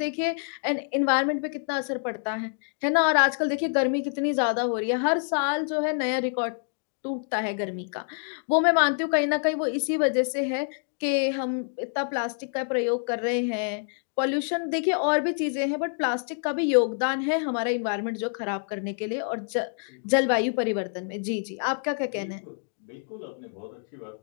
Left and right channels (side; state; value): right; silent; 56 dB below the other